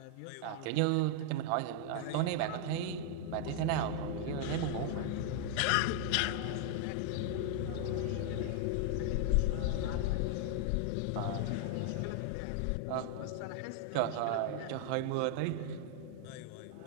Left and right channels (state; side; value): different; both; correlation 0.00